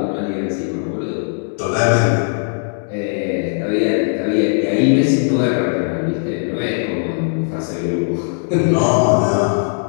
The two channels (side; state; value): right; silent; digital silence